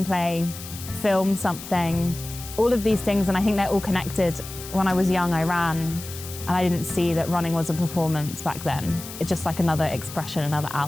film something, all of these things, and I think they're all connected. When I was young, I ran, and I didn't see that running was a performance back then. It's just like another expression, another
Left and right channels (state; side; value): noise; left; hiss, 12 dB below the sound